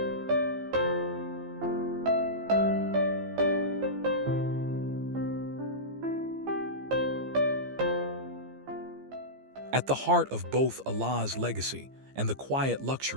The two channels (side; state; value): left; late; 15 ms